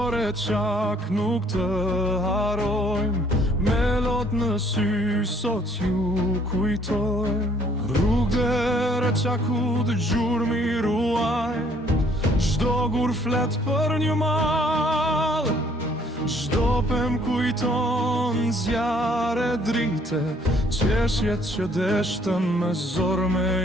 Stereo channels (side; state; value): both; normal; correlation 0.62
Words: re qak nuk të harojmë, me lot në sy sot ju kujtojmë. Rrugë re qaku të gjurmi ruajnë, çdo gur flet për një mal, çdo pem kujton zjarre drite, qeshjet që deshtën me zor